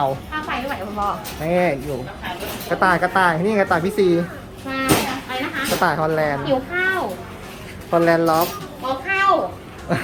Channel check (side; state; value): both; identical; correlation 1.00